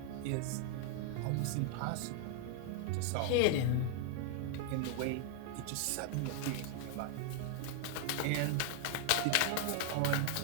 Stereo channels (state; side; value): different; both; correlation 0.00